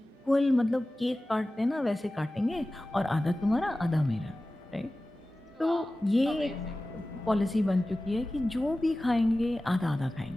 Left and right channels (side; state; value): both; normal; correlation 0.96